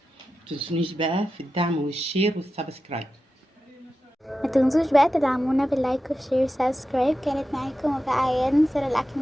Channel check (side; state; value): both; normal; correlation 0.92